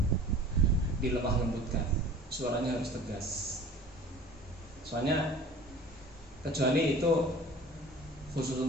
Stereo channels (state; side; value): normal; both; correlation 0.44